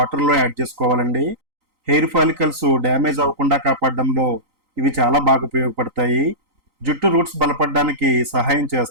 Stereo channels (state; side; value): late; left; 3.9 ms